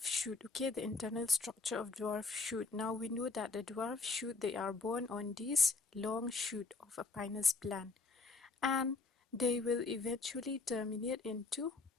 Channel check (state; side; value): quieter; right; 3.9 dB